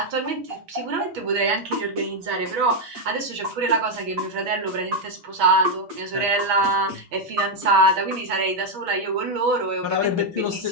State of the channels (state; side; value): late; left; 6.2 ms